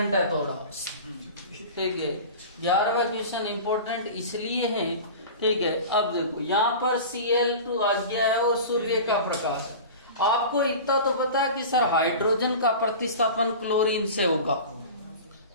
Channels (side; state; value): both; inverted; correlation -0.34